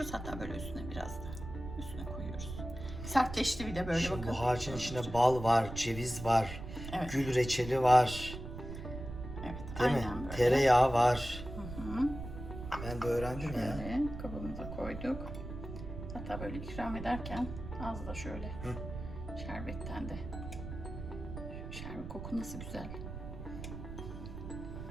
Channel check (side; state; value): right; noise; rumble, 9 dB below the sound